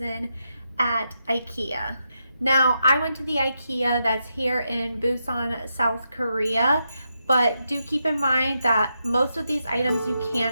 at Ikea. Now, I went to the Ikea that's here in Busan, South Korea. But do keep in mind that most of these items you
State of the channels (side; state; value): both; inverted; correlation -0.84